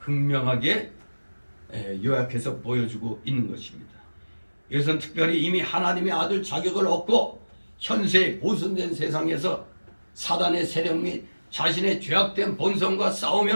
요약해서 보여주고 있는 것입니다. 이것은 특별히 이미 하나님의 아들 자격을 얻고 현세 보존된 세상에서 사단의 세력 및 자신의 죄악된 본성과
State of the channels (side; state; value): both; inverted; correlation -1.00